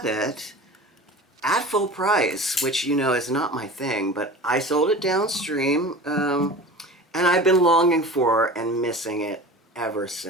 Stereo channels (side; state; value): both; normal; correlation 0.36